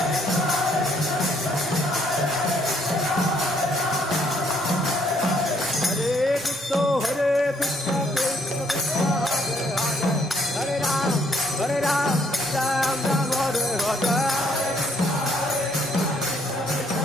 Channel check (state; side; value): normal; both; correlation 0.68